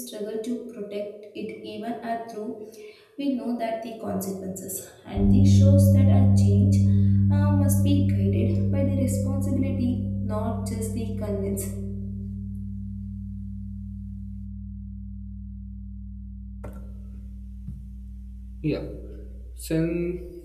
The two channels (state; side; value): identical; both; correlation 1.00